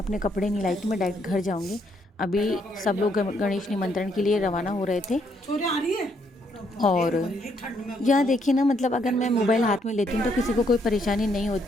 कपड़े नहीं लाई थी, मैं डायरेक्ट घर जाऊंगी। अभी सब लोग गणेश निमंत्रण के लिए रवाना हो रहे थे। और यहाँ देखिए ना, मतलब अगर मैं मोबाइल हाथ में लेती हूँ तो किसी को कोई परेशानी नहीं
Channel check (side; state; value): both; normal; correlation 0.72